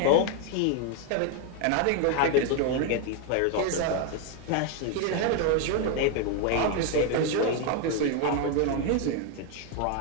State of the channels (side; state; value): both; different; correlation 0.01